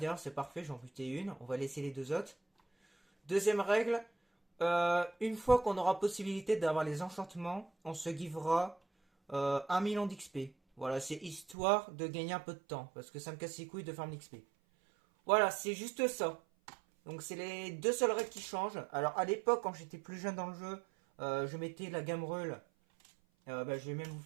c'est parfait, j'en butais une, on va laisser les 2 autres. Deuxième règle, une fois qu'on aura possibilité d'avoir les enchantements, on se givera 1 million d'XP. Voilà, c'est histoire de gagner un peu de temps, parce que ça me casse les couilles de faire l'XP. Voilà, c'est juste ça. Donc c'est les 2 seules règles qui changent. Alors à l'époque, quand j'étais plus jeune dans le jeu, je mettais la gamme Reul. Bah, je vais même vous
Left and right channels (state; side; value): drops out; left; at 11.6 s